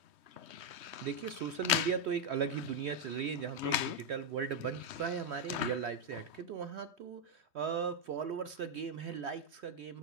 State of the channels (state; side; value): late; left; 3.2 ms